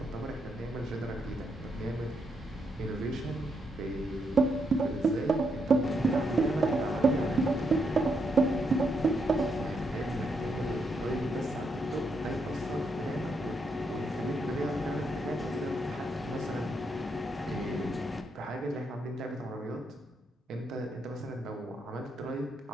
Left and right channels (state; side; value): normal; both; correlation 0.79